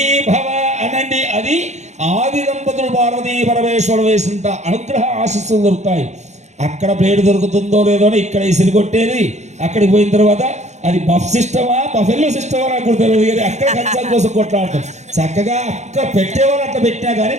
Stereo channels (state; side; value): late; left; 0.33 ms